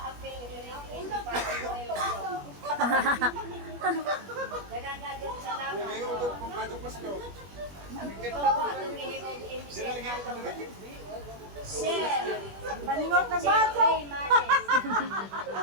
apel, hindi pa si Boy. Dagang agad salamat. Ngayon ito kung Batang Pasko. Ito po atong ihigog Dili lagi ka dili. Share. Paningot na Jeffrey Males.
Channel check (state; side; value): late; left; 21 ms